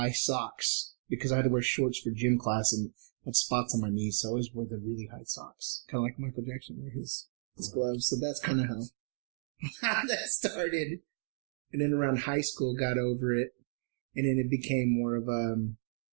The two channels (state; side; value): silent; left; digital silence